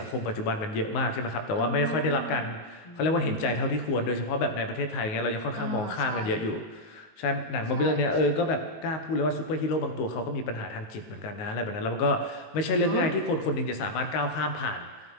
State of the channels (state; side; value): late; right; 19 ms